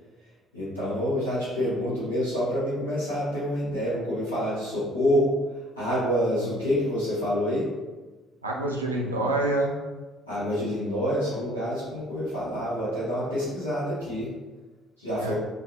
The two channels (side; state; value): both; normal; correlation 0.55